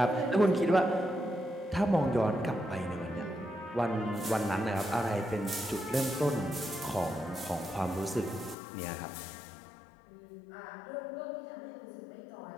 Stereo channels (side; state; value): right; drops out; at 8.6 s